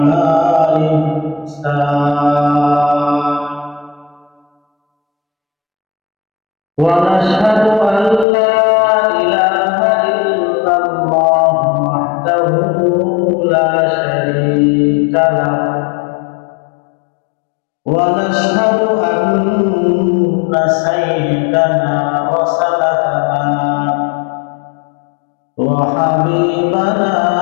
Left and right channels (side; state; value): right; drops out; at 8.2 s